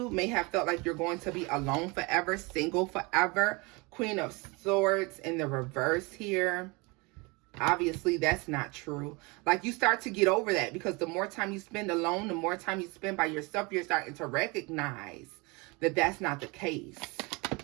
may have felt like you're going to be alone forever, single forever. Queen of Swords in the reverse here. Obviously, that's not true. Like, you start to get over that, because the more time you spend alone, the more time you spend by yourself, you're starting to recognize that that's not the case.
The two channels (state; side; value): quieter; left; 27.1 dB